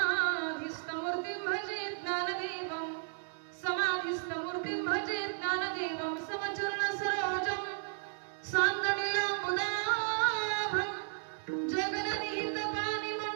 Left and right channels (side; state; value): left; silent; digital silence